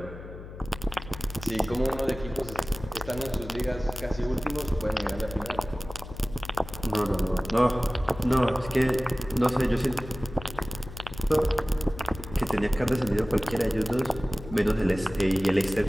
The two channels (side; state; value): left; noise; hum, 13 dB below the sound